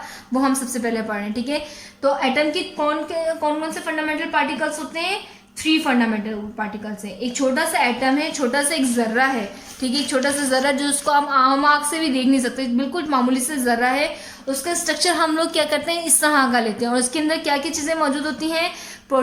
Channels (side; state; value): both; identical; correlation 1.00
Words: वो हम सबसे पहले पढ़ रहे हैं. ठीक है, तो एटम के कौन से फंडामेंटल पार्टिकल्स होते हैं? 3 फंडामेंटल पार्टिकल्स हैं. एक छोटा सा एटम है, छोटा सा एक जर्रा है. ठीक है, एक छोटा सा जर्रा जो उसको हम आम आँख से भी देख नहीं सकते, बिल्कुल मामूली से जर्रा है. उसका स्ट्रक्चर हम लोग क्या करते हैं? इस तरह का लेते हैं और उसके अंदर क्या क्या चीज़ें मौजूद होती हैं?